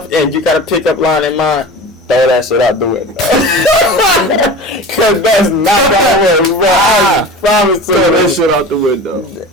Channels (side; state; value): both; normal; correlation 0.34